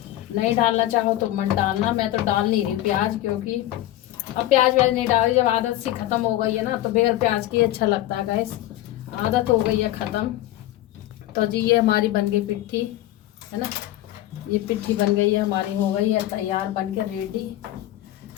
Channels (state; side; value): quieter; right; 14.8 dB